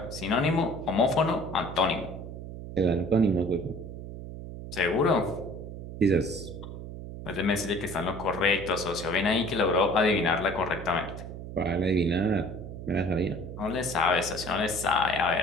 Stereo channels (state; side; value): noise; right; hum, 10 dB below the sound